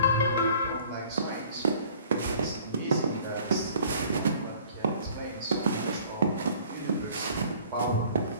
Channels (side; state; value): both; inverted; correlation -0.53